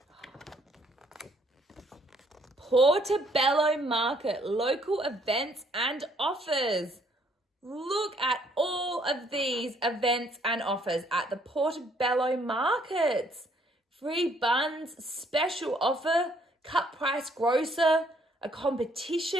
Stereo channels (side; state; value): both; normal; correlation 0.65